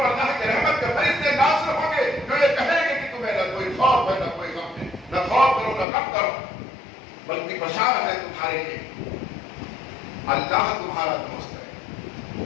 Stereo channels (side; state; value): right; drops out; at 5.9 s